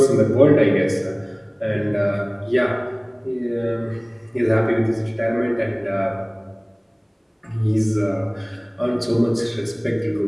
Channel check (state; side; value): identical; both; correlation 1.00